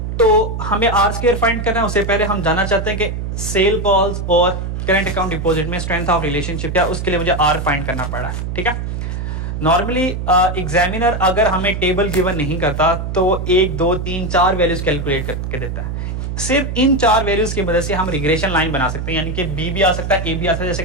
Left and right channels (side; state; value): right; noise; hum, 4 dB below the sound